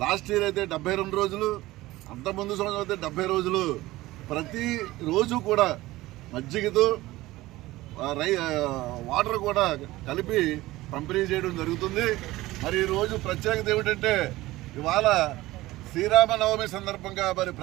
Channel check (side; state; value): left; quieter; 18.1 dB